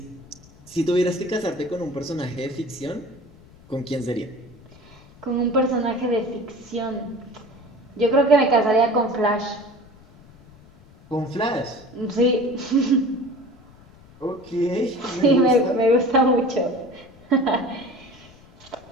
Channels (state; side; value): noise; left; rumble, 25 dB below the sound